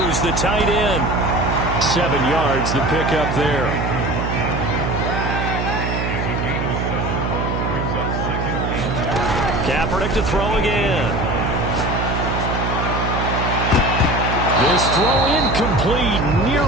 the tight end. 7 yards, the pickup there. Kaepernick to throw again. This throw incomplete,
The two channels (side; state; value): right; noise; hum, 1 dB below the sound